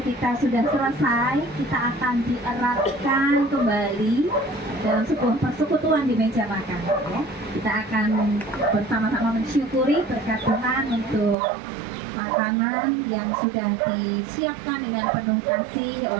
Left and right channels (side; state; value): left; drops out; at 11.4 s